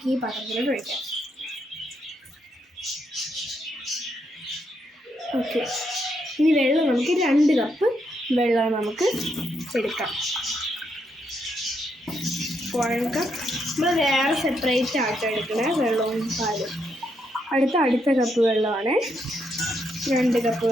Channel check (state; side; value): normal; both; correlation 0.78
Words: ഈ പാത്രത്തിലോട്ട് ഒഴിക്കാം. ഓക്കെ, ഇനി വെള്ളം നമുക്ക് 2 കപ്പ് വെള്ളം നമുക്ക് എടുക്കാം. 1 കപ്പ് നമ്മൾ വേറെ സെപ്പറേറ്റ് ആയിട്ട് എടുക്കണേ വെള്ളവും പാലും. അടുത്ത കപ്പ് വെള്ളമാണ്. 2 കപ്പ്